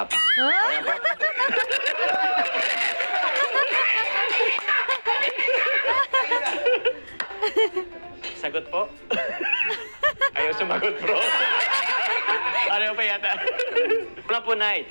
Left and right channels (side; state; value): both; inverted; correlation -1.00